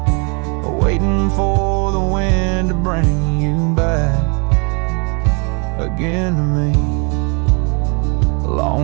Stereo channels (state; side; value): quieter; left; 34.3 dB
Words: waiting for the wind to bring you back again to me.